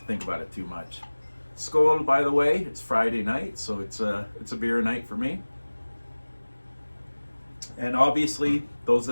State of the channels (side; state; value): both; inverted; correlation -1.00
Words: think about it too much. Skål, by the way. It's Friday night, so it's a beer night for me. And obviously, those